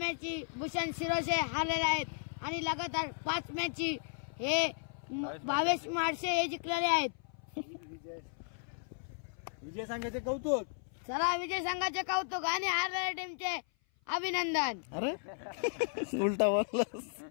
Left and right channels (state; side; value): silent; right; 54 dB below the other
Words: भूषण शिरोसे हारलेले आहेत आणि लगातार 5 मॅची हे 22 मार्च हे जिंकलेले आहेत. विजय संघाचे कौतुक. चला विजय संघाचे कौतुक आणि हारलेल्या टीमचे अभिनंदन. अरे उलटा बोललास.